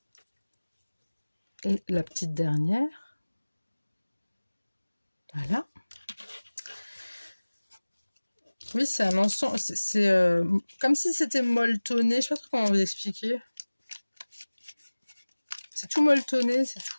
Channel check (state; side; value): inverted; both; correlation -1.00